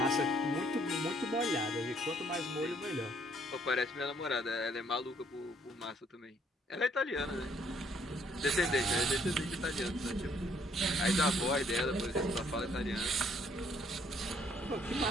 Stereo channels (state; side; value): normal; both; correlation 0.65